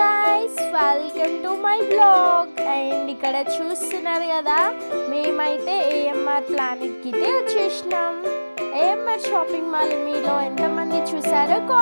welcome to my blog. And ఇక్కడ చూస్తున్నారు కదా, మేమైతే ఏఎంఆర్ ప్లానెట్కి అయితే వచ్చేసినాం. ఏఎంఆర్ షాపింగ్ మాల్ మీలో ఎంతమంది చూసారో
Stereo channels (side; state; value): both; inverted; correlation -1.00